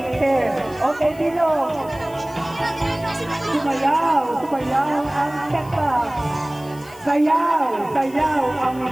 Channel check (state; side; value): noise; left; hiss, 23 dB below the sound